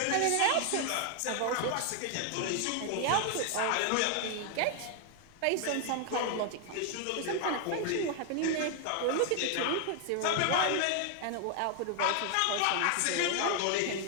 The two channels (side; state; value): both; different; correlation 0.00